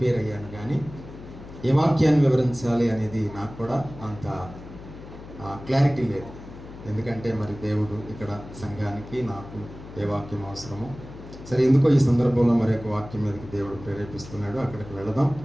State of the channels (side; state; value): left; noise; hum, 15 dB below the sound